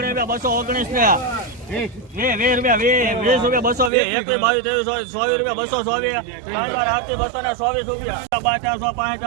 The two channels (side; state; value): left; drops out; at 3.9 s